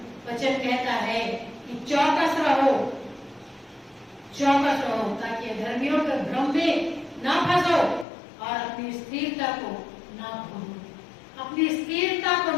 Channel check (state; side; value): drops out; right; at 8.1 s